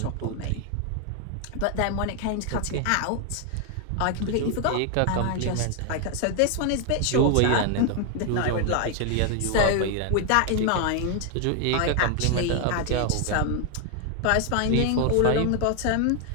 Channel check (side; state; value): both; different; correlation 0.00